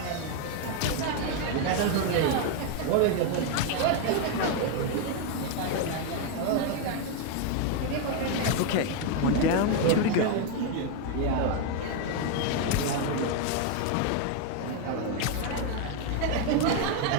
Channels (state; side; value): different; both; correlation 0.01